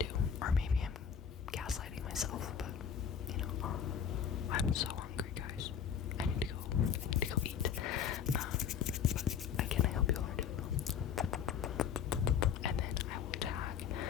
Or maybe I'm gaslighting myself, but you know, I'm so hungry, guys. I need to go eat. But again, I hope you all are doing well. And then I will tag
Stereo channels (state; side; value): quieter; right; 7.9 dB